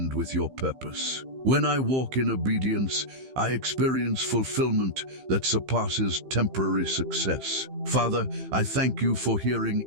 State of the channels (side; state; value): left; late; 15 ms